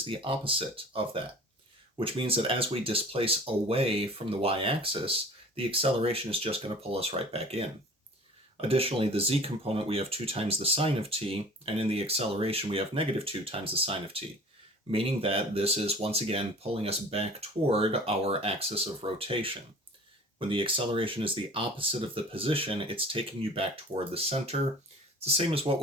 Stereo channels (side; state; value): both; normal; correlation 0.44